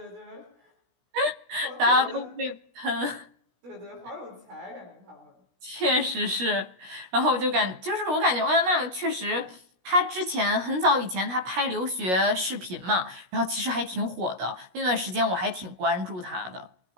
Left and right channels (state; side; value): late; left; 16 ms